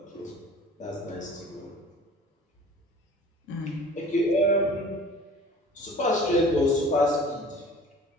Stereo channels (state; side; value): normal; both; correlation 0.46